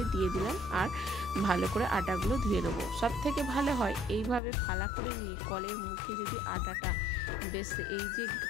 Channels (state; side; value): drops out; right; at 4.4 s